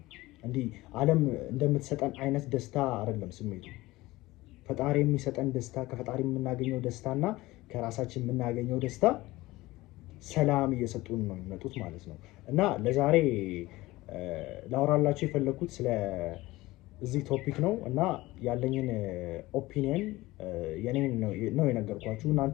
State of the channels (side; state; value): right; quieter; 19.1 dB